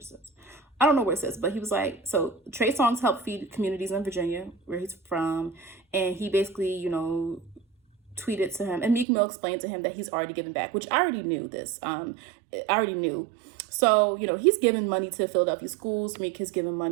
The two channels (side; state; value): left; drops out; at 9.1 s